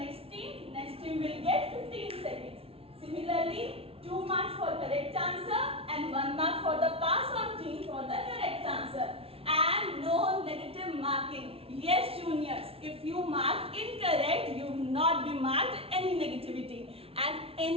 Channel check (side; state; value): left; late; 0.27 ms